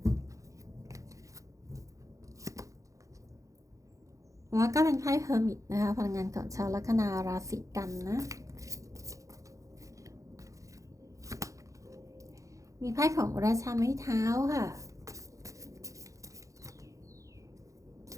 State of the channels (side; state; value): left; late; 0.16 ms